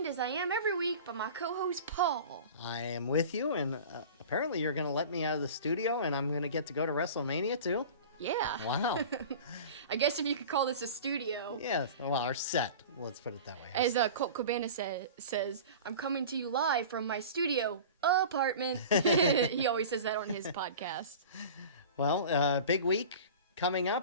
as I am every week, by my co-host, Paul. I am with you, and apparently you're going to let me out of the studio, and I'm going to get to go to WrestleMania, too? Yeah. Wow. I guess if you could call this a studio. Yes, well, our set. Let's put it that way. As Colt Cabana says, I'm coming to you live from my studio apartment. He always says that on his podcast. Well, big week coming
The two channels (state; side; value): inverted; both; correlation -0.37